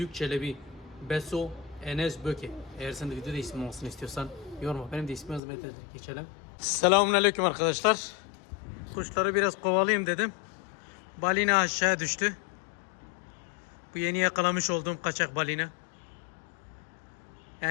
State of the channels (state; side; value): drops out; right; at 5.4 s